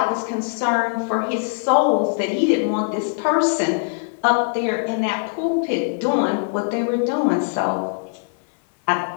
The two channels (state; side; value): silent; right; digital silence